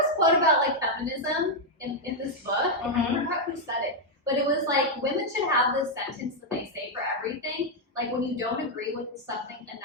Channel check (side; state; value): both; normal; correlation -0.01